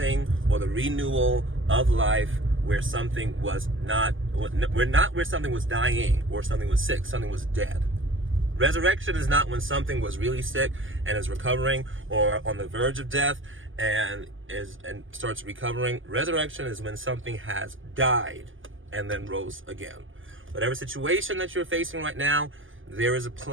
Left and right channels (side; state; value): left; late; 0.58 ms